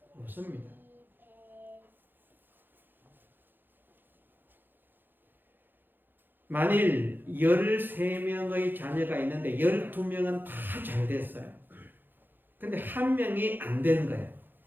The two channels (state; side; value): late; left; 0.094 ms